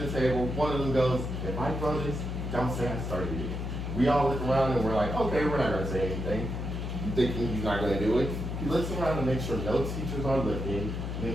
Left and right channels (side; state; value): left; noise; hum, 4 dB below the sound